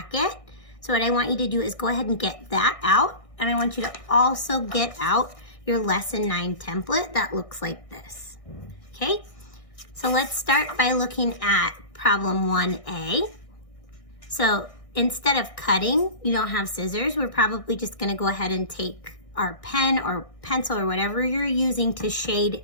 So what I want you to do is go ahead and get that out. And I want you to also get out your Lesson 9 template that looks like this. Okay, so let's start by looking at problem 1A. So instead of cutting, you don't have scissors, we're probably just gonna go ahead and take our pen or pencil or whatever you're using to shade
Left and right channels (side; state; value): right; late; 1.6 ms